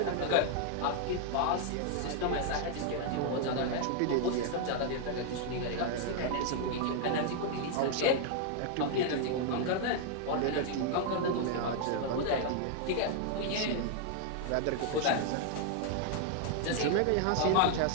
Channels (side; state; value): both; different; correlation 0.00